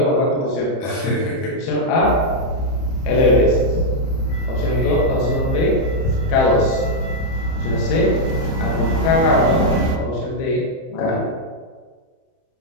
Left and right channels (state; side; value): late; right; 30 ms